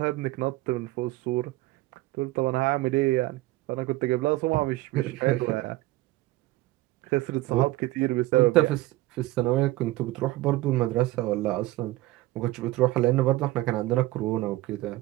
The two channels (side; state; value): left; quieter; 18.3 dB